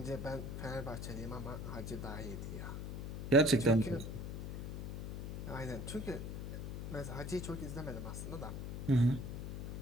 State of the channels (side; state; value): left; noise; hum, 5 dB below the sound